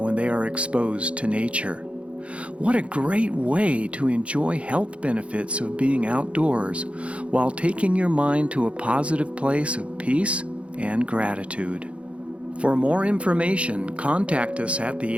they are exposed to nature. What a great way to enjoy health benefits of being outdoors while taking your mind to a positive place of peace and gratitude. For more information, contact us at the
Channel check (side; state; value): left; late; 0.061 ms